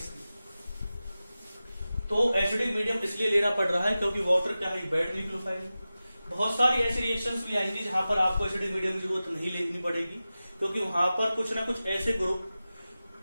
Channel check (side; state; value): both; inverted; correlation -0.95